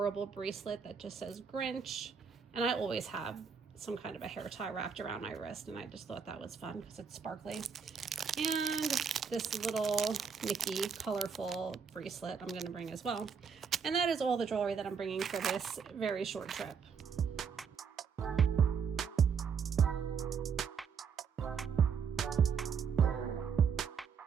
bracelet that just says Grinch, and I always have some kind of a hair tie wrapped around my wrist, and I just thought that was fun because it's sparkly. And this little Mickey colorful bracelet I'm going to bring as well. And that is all the jewelry that I'm bringing for this very short trip.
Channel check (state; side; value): quieter; left; 6.4 dB